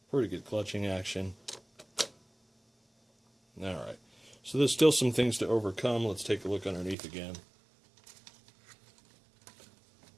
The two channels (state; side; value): drops out; left; at 7.0 s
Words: Pretty good clutching action. Alright, so there's still some things to overcome. Let's take a look underneath again.